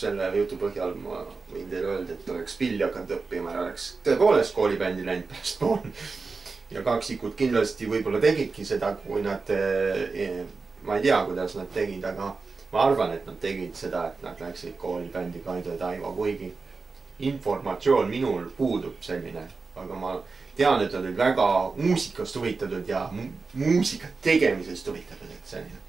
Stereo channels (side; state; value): left; quieter; 4.3 dB